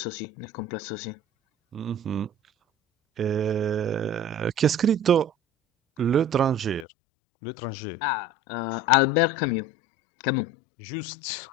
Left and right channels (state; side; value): drops out; right; at 6.9 s